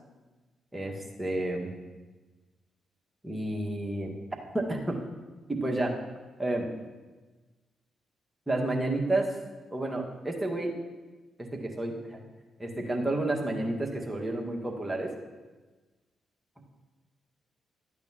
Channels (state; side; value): normal; both; correlation 0.88